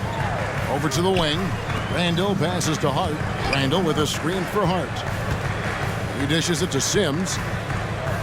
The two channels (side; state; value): both; identical; correlation 1.00